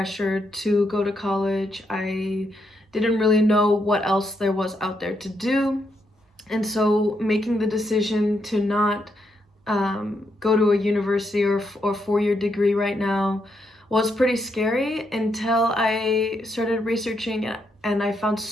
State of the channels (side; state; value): both; normal; correlation 0.79